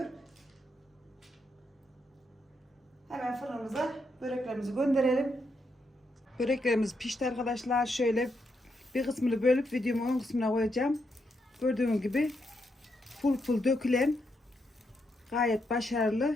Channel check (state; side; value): normal; both; correlation 0.80